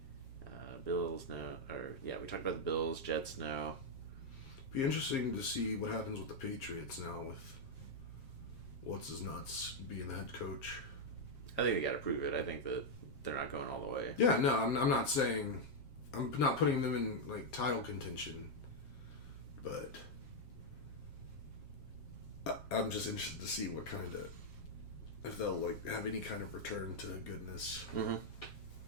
Bills, no. We talked about the Bills, Jets, no. Be interesting to see what happens with the Patriots now with what's-his-nuts being the head coach. I think they got to prove it. I think that they're not going all the way. Yeah, no, I'm not saying... I'm not putting them in, like, title contention, but I'm just interested to see what kind of... if they'll, like, have any kind of return to goodness. Mm-hmm.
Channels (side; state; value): right; late; 7.5 ms